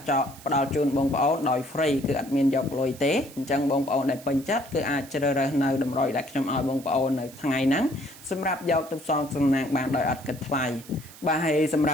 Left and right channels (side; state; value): right; noise; hiss, 19 dB below the sound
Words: ចោលផ្ដល់ជូនបងប្អូនដោយ free គឺអត់មានយកលុយទេអញ្ចឹងបងប្អូនដែលពេញចិត្តគឺអាចជ្រើសរើសនៅតម្រុយដែលខ្ញុំឲ្យបងប្អូននៅថ្ងៃហ្នឹងសម្រាប់យកទៅផ្សងសំណាងបានដោយអត់គិតថ្លៃបាទហើយសម្រ